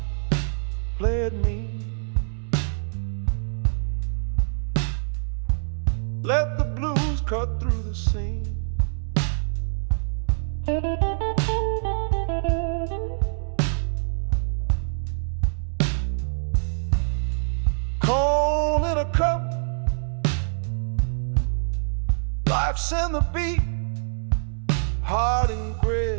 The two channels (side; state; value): left; silent; digital silence